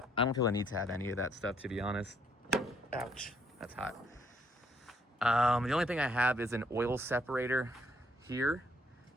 I don't feel I need to have any of that stuff, to be honest. Ouch, that's hot. The only thing I have is an oil separator here.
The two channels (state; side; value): normal; both; correlation 0.69